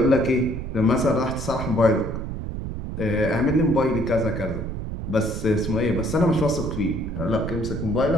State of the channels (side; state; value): right; noise; rumble, 6 dB below the sound